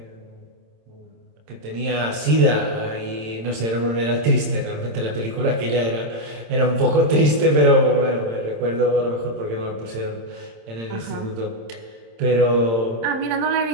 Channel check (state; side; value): late; left; 26 ms